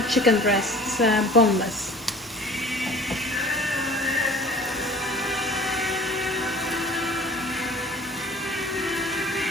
chicken breasts, boneless.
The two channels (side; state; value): both; normal; correlation 0.46